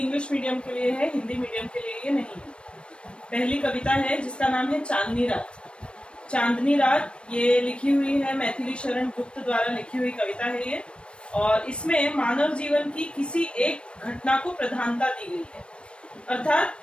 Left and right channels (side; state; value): right; late; 0.058 ms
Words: मीडियम के लिए है, हिंदी मीडियम के लिए ये नहीं है। पहली कविता है जिसका नाम है चांदनी रात। चांदनी रात ये लिखी हुई है मैथिली शरण गुप्त द्वारा लिखी हुई कविता है ये, और इसमें मानव जीवन की किसी एक घटना को प्रधानता दी गई है।